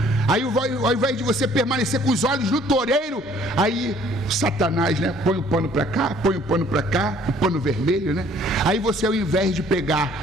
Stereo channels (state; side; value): normal; both; correlation 0.58